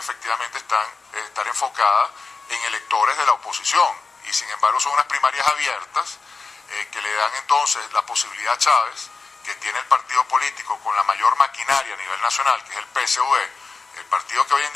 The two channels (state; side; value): quieter; right; 4.3 dB